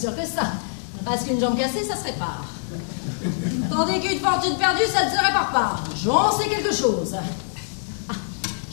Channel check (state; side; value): silent; right; digital silence